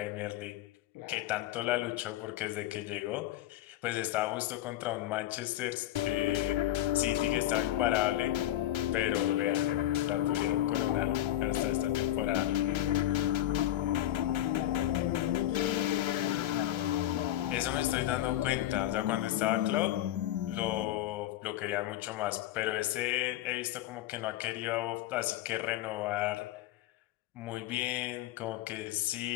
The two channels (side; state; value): right; quieter; 13.5 dB